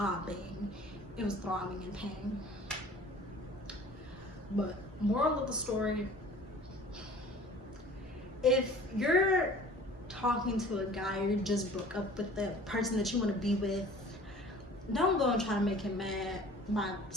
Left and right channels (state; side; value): normal; both; correlation 0.47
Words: It was throbbing in pain. But moral of the story, if you're talking to a guy or you just broke up with the person that you want to be with, don't go and try to make him mad by